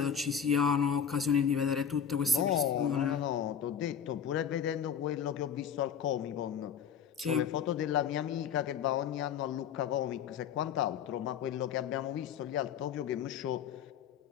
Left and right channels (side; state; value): right; quieter; 7.8 dB